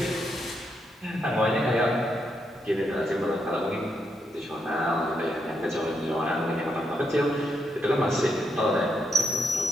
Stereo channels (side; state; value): both; normal; correlation 0.80